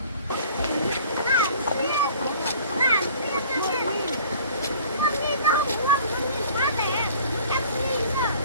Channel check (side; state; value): both; inverted; correlation -0.50